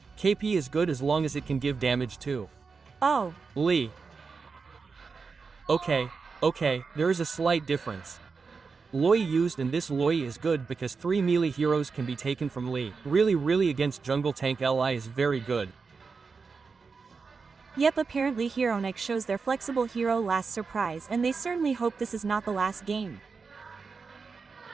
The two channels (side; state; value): left; quieter; 4.9 dB